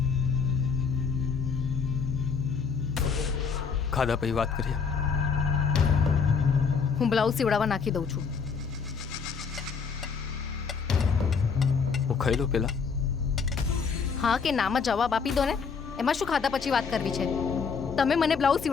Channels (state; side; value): quieter; right; 5.8 dB